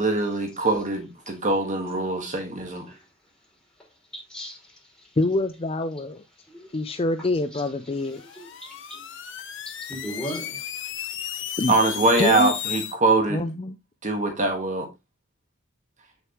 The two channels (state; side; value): normal; both; correlation 0.16